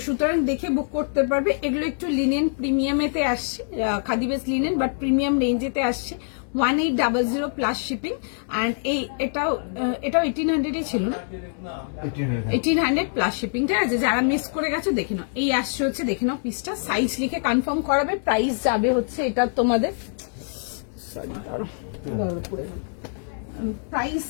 সুতরাং দেখে বুক করতে পারবে। এগুলো একটু লিনেন প্রিমিয়ামেতে আসছে, khadi base linen but premium রেঞ্জেতে আসছে। 1800 প্লাস শিপিং। অ্যান্ড এটাও 1800 ছিল না, 1800 প্লাস শিপিং, ঠিক আছে? যারা মিস করে গেছো দেখে নাও। এই আসছে হচ্ছে, দেখে নাও পিসটা, সাইজ লিখে কনফার্ম করাবে। প্রাইস যাবে হচ্ছে এটা তোমাদের, প্রাইস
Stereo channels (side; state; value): right; silent; digital silence